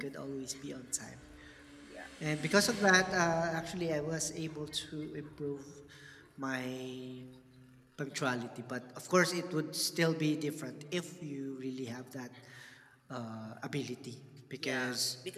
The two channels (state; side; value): identical; both; correlation 1.00